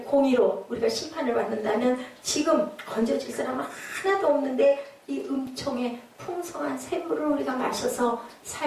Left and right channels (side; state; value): both; identical; correlation 1.00